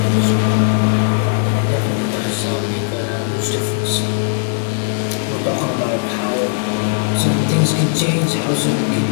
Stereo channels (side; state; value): right; silent; digital silence